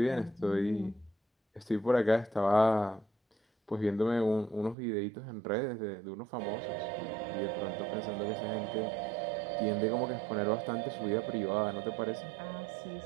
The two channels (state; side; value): drops out; left; at 4.8 s